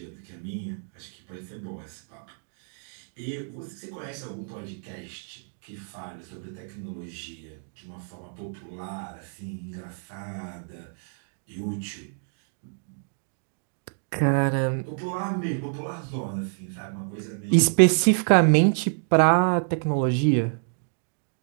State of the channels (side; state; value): left; silent; 59 dB below the other